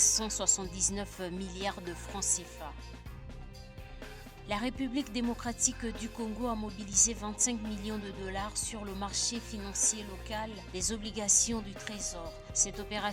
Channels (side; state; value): both; identical; correlation 1.00